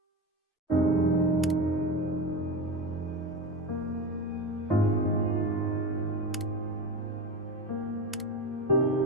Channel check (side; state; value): both; normal; correlation 0.23